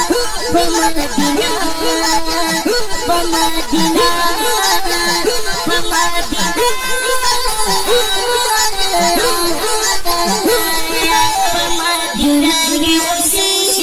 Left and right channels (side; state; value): both; identical; correlation 1.00